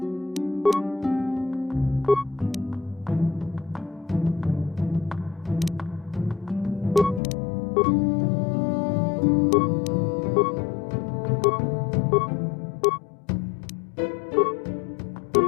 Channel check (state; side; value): drops out; right; at 7.2 s